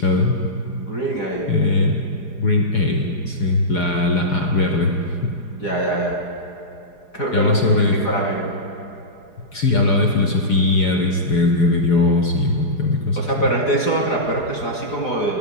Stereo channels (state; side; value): late; right; 4.9 ms